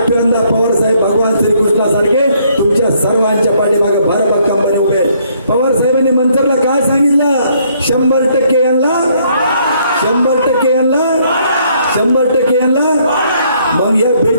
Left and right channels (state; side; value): inverted; both; correlation -0.67